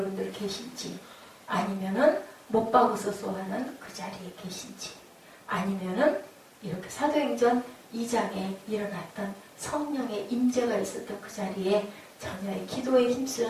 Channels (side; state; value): both; identical; correlation 1.00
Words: 계신지, 아니면은 못 박으셔서 하는 그 자리에 계신지, 아니면은 이렇게 사도행전 2장에 일어났던 성령의 임재가 있었던 그 자리에 전혀의 기도에